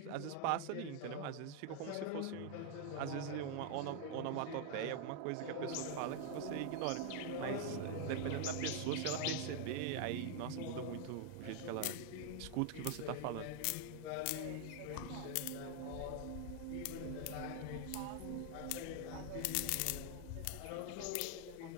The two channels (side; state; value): both; different; correlation 0.00